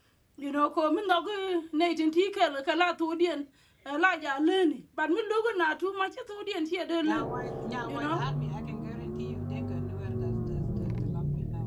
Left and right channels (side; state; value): both; identical; correlation 1.00